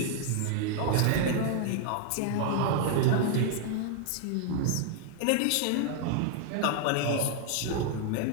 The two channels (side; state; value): both; different; correlation 0.00